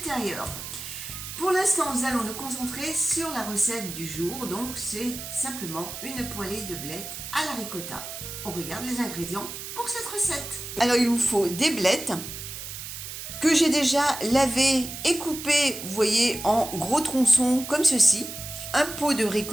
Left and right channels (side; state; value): right; noise; hiss, 9 dB below the sound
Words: Pour l'instant, nous allons nous concentrer sur la recette du jour. Donc, c'est simplement une poêlée de blettes à la ricotta. On regarde les ingrédients pour cette recette. Alors, il vous faut des blettes que j'ai déjà lavées et coupées, vous voyez, en gros tronçons comme ceci. Un pot de